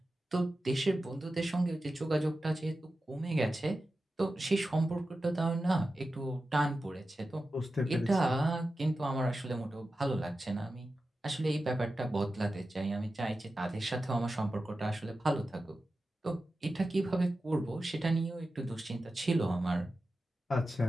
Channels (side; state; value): both; normal; correlation 0.93